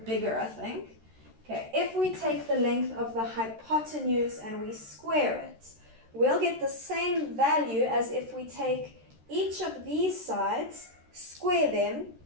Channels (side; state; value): left; late; 13 ms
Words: bigger, I think. Okay, if we take the length of the hypotenuse and we square it, we'll get the same value as if we take each of these sides, square them,